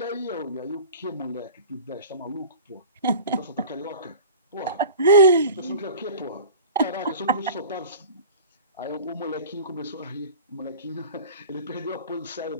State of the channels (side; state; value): both; inverted; correlation -0.40